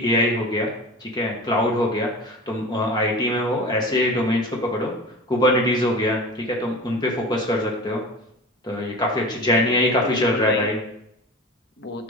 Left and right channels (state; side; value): normal; both; correlation 0.34